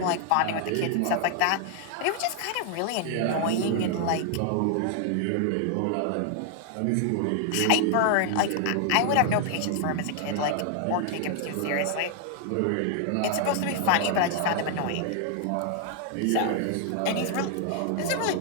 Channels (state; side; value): different; both; correlation 0.00